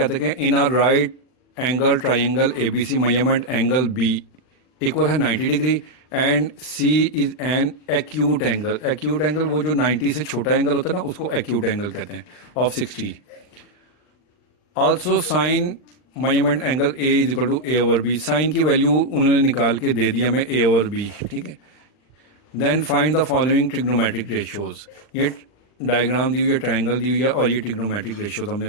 हैं इन are right angle triangle ABC measurement angle B equal है 90 degree and C is an acute angle. Acute angle वो जो 90 से छोटा एंगल होता है ना उसको एक्यूट एंगल कहते हैं, of 60। Also sine measurement angle A is equal to A/B। Sine की वैल्यू उन्होंने निकाल के दे दिया हमें A/B, ठीक है। Then find the following trigonometric ratios. ये डायग्राम दी हुई है, ट्राइंगल दी हुई है और ये ट्रिग्नोमेट्रिक रेशियोज हमने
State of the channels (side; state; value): right; late; 39 ms